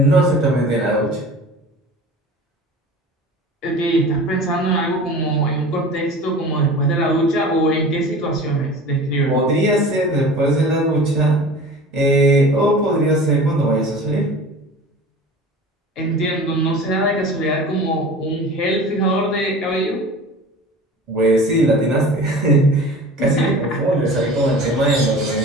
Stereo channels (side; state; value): both; normal; correlation 0.39